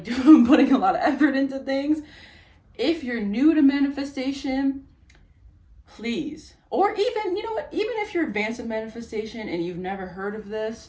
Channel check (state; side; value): identical; both; correlation 1.00